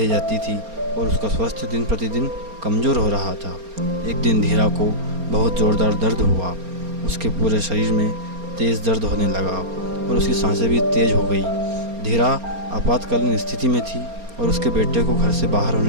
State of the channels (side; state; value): left; late; 4.3 ms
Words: जाती थी और उसका स्वास्थ्य दिन प्रतिदिन कमज़ोर हो रहा था। एक दिन धीरा को बहुत ज़ोरदार दर्द हुआ। उसके पूरे शरीर में तेज़ दर्द होने लगा और उसकी सांसें भी तेज़ हो गई। धीरा आपातकालीन स्थिति में थी और उसके बेटे को घर से बाहर